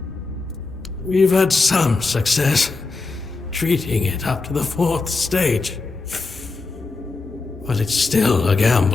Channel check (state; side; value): quieter; right; 3.8 dB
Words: We've had some success treating it up to the 4th stage. But it's still a